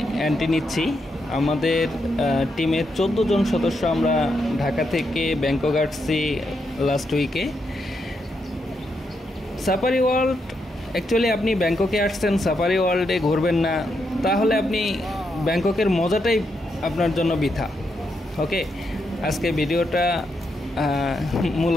এন্ট্রি নিচ্ছি। আমাদের টিমের 14 জন সদস্য আমরা ঢাকা থেকে ব্যাংকক আসছি লাস্ট উইকে। সাফারি ওয়ার্ল্ড অ্যাকচুয়ালি আপনি ব্যাংককে আসছেন, সাফারি ওয়ার্ল্ডে ঘুরবেন না, তাহলে আপনি ব্যাংককের মজাটাই আপনার জন্য বৃথা। ওকে, আজকে ভিডিওটা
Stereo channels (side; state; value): both; normal; correlation 0.81